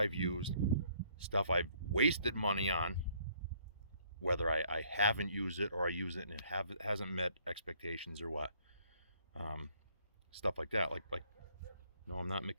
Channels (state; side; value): inverted; both; correlation -0.64